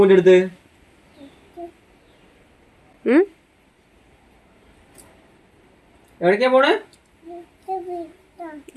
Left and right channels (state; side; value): identical; both; correlation 1.00